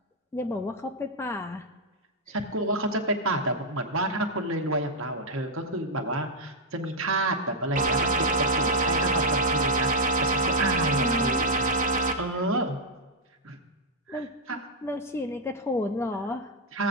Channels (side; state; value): both; normal; correlation -0.02